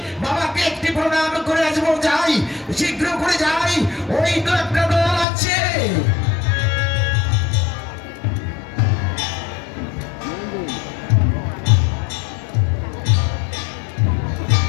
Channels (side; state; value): right; drops out; at 5.2 s